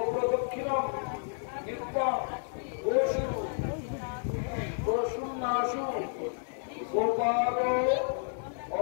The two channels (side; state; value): right; silent; digital silence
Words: नित्यं गोषुन्नाशु गोपालो